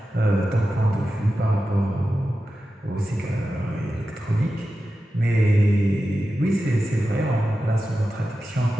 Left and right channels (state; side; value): normal; both; correlation 0.92